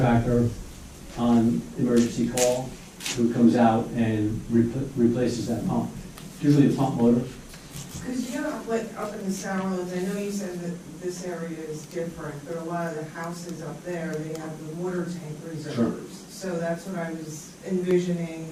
on emergency call who comes out and replaces that pump. Usually a pump motor. Because, like up in the Sourlands, I know you said that this area is different, but a lot of the houses up there, they have the water tank reserves. Sure. So that's what I was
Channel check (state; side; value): identical; both; correlation 1.00